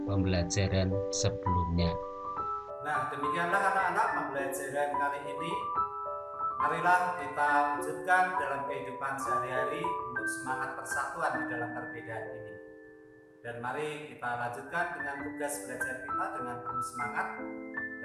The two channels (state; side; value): identical; both; correlation 1.00